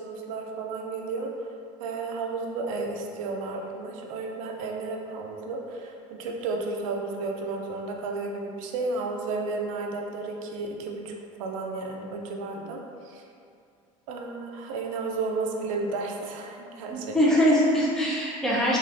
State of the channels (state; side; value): normal; both; correlation 0.36